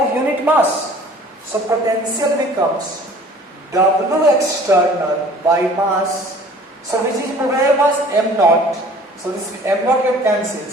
unit mass. So potential becomes W external by mass. So which is where mass? M naught. So this M naught get cancelled.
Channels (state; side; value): normal; both; correlation 0.50